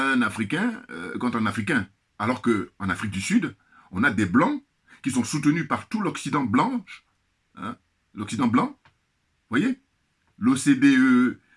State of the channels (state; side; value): identical; both; correlation 1.00